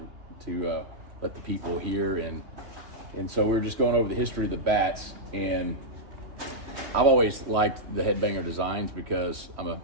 to let the people hear. And so we were just going over the history of the bats, and I've always liked the Headbanger designs because I'm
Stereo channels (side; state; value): left; late; 3.1 ms